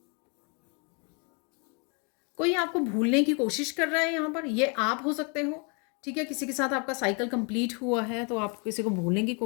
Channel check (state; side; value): quieter; right; 34.8 dB